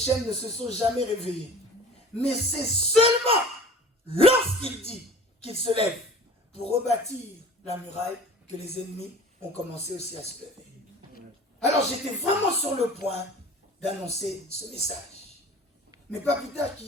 ne se sont jamais réveillés. Mais c'est seulement lorsqu'il dit qu'il se lève pour rebâtir la muraille que les ennemis ont commencé aussi à se lever. Alors j'étais vraiment sur le point d'annoncer ce message. Mais pas plus tard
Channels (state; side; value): normal; both; correlation 0.42